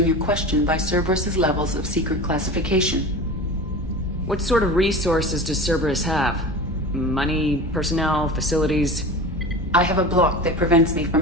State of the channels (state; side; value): normal; both; correlation 0.32